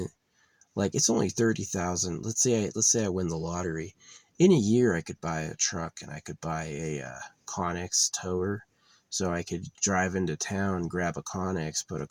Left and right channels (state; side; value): identical; both; correlation 1.00